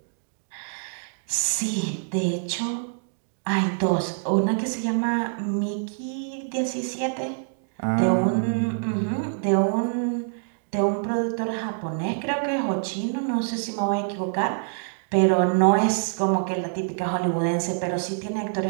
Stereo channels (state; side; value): silent; left; digital silence